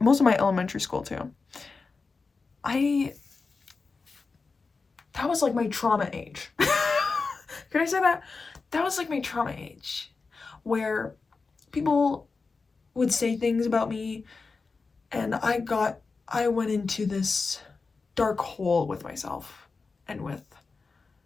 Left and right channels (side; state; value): right; quieter; 4.3 dB